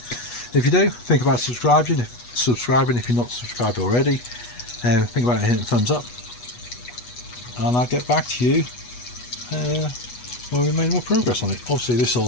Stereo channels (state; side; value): late; right; 8.2 ms